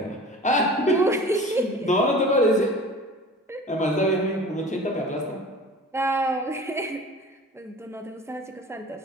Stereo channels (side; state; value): both; normal; correlation 0.40